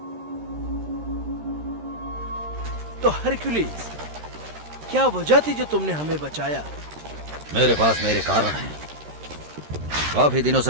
तो हरकुलिस, क्या वजह थी जो तुमने हमें बचाया? मेरे पास मेरे कारण हैं। काफी दिनों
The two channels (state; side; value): late; left; 13 ms